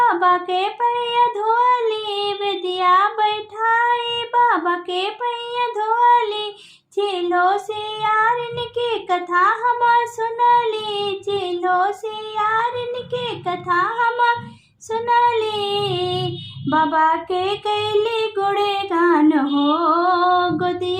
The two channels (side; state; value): both; identical; correlation 1.00